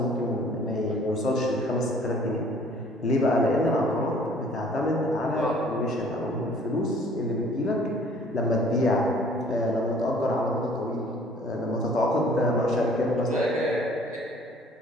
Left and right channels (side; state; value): both; normal; correlation 0.55